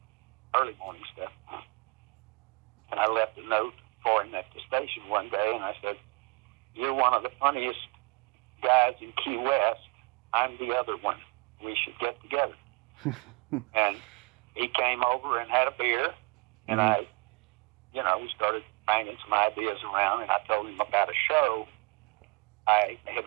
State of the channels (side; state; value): left; quieter; 29.9 dB